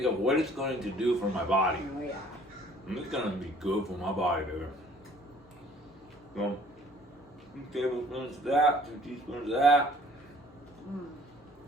of what it's going to do for my body. Oh, yeah. And it's going to be good for my body, baby. So, 2 tablespoons of that, 2 teaspoons of that.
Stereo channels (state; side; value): noise; left; hum, 29 dB below the sound